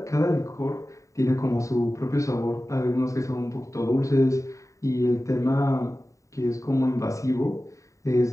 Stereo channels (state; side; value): late; right; 0.16 ms